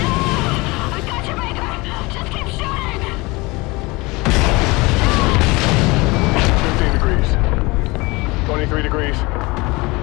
I got you, Baker! Just keep shooting! 15 degrees. 23 degrees.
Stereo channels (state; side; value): quieter; right; 23.8 dB